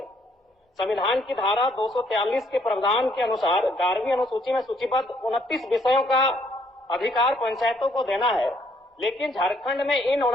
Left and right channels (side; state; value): both; normal; correlation 0.68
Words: संविधान की धारा 243 के प्रावधान के अनुसार 11वीं अनुसूची में सूचीबद्ध 29 विषयों का अधिकार पंचायतों को देना है, लेकिन झारखंड में इन